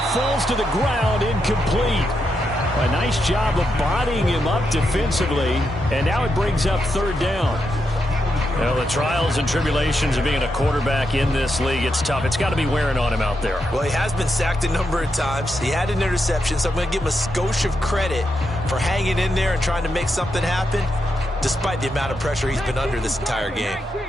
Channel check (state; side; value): normal; both; correlation 0.84